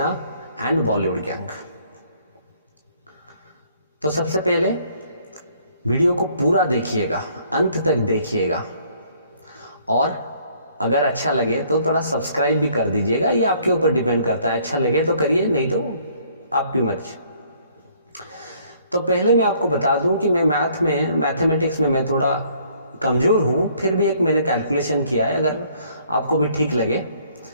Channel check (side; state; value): both; inverted; correlation -0.62